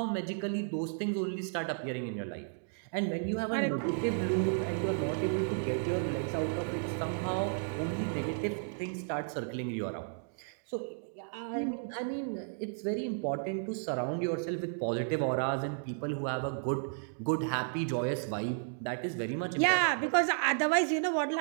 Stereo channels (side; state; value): left; silent; digital silence